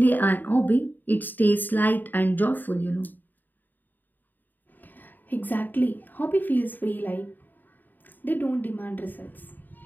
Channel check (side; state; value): right; late; 0.089 ms